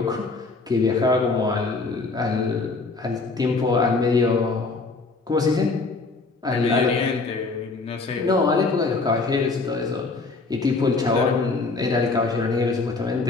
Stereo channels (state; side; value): quieter; right; 3.8 dB